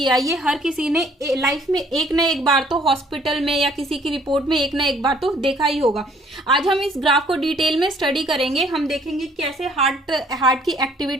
ये हर किसी ने लाइफ में एक ना एक बार तो हॉस्पिटल में या किसी की रिपोर्ट में एक ना एक बार तो देखा ही होगा। आज हम इस ग्राफ को डिटेल में स्टडी करेंगे। हम देखेंगे कैसे हार्ट की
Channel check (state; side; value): normal; both; correlation 0.60